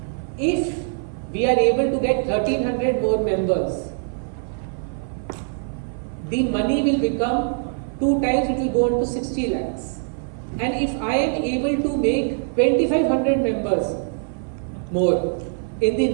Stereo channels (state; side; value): silent; left; 55 dB below the other